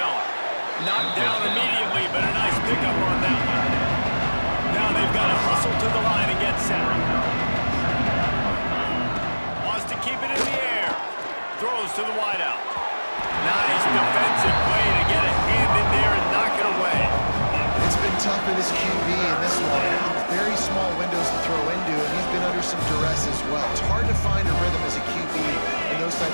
Knocked down immediately, but a nice pickup on that one. Now they've got to hustle to the line and get set. Wants to keep it in the air. Throws to the wideout. Nice defensive play to get a hand in there and knock it away. It's been tough for this QB in this one. Very small windows to throw into, and he's been under some duress as well. It's hard to find a rhythm as a QB in those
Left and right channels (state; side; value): inverted; both; correlation -1.00